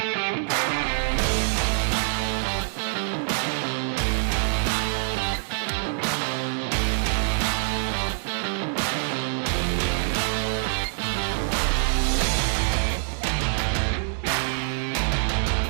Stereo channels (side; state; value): left; silent; 62 dB below the other